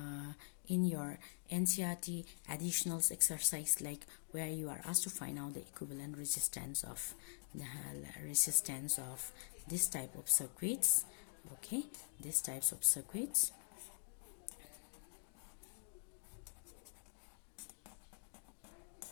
NCERT additionals exercise, like where you are asked to find out the equivalent resistance of this type of circuits. Okay, these types of circuits.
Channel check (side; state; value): right; silent; digital silence